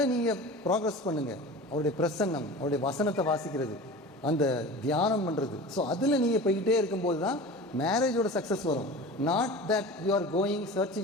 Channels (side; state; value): both; normal; correlation 0.35